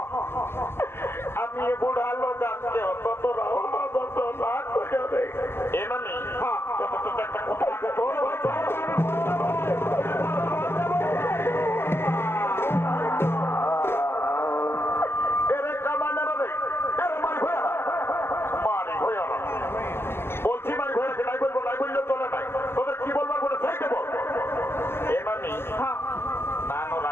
আমি এ বুড়া লোক আনতে অত না করে এমানি একটা কথা বলছি মারি ভয়াকে নাই বলবো, নাই বললেও চলে নাই। তোদের কি বলবার বলে চাইতে বল। এমানি নানো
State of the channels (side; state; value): right; late; 0.12 ms